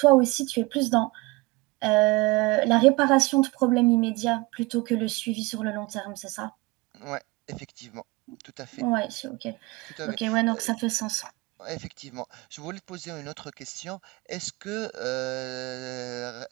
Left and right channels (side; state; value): left; quieter; 22.5 dB